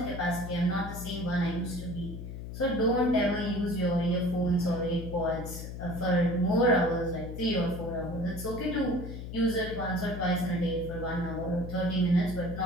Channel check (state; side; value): noise; left; hum, 8 dB below the sound